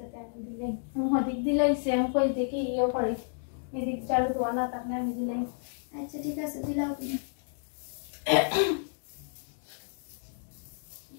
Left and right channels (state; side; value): silent; right; digital silence